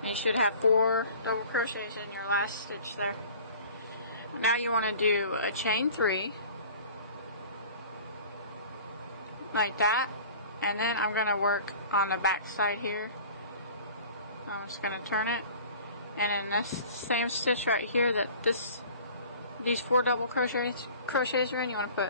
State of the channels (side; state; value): both; inverted; correlation -0.45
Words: you should have 4 double crochets in your last stitch there. Now you want to do a chain 3 like that, and then I'm going to work on the back side here. I'm just going to turn it, and in this same stitch right here that these 4 double crochets are in, you want to